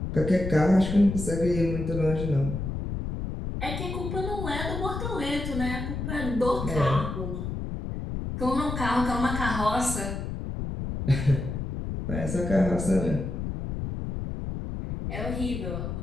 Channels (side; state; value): left; noise; rumble, 4 dB below the sound